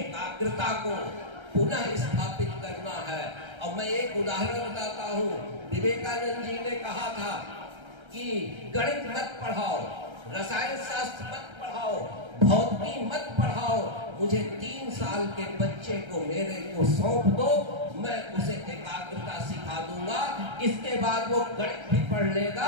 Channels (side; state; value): left; late; 1.3 ms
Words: को पुनः स्थापित करना है। और मैं एक उदाहरण बताता हूँ, विवेकानंद जी ने कहा था कि गणित मत पढ़ाओ, रसायन शास्त्र मत पढ़ाओ, भौतिकी मत पढ़ाओ, मुझे 3 साल के बच्चे को मेरे को सौंप दो, मैं उसे एकाग्रता सिखा दूंगा। इसके बाद वो गणित भी पढ़